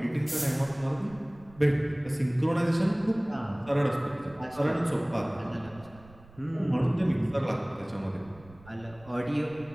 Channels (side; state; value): right; noise; rumble, 23 dB below the sound